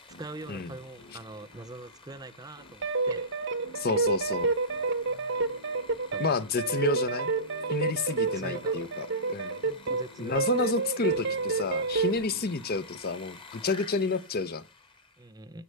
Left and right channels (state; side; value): normal; both; correlation -0.18